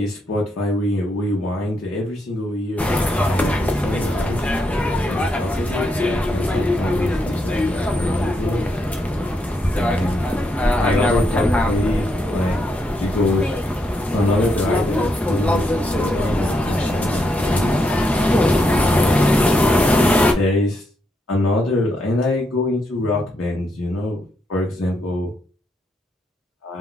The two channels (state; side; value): normal; both; correlation 0.79